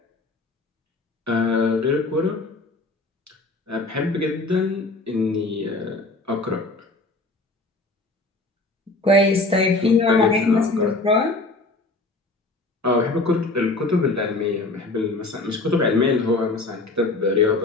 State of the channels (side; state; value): right; quieter; 3.1 dB